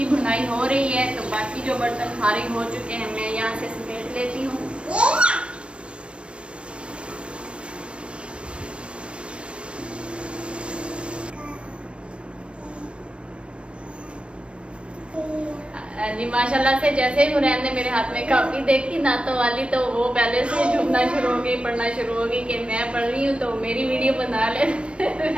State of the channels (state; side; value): late; left; 0.057 ms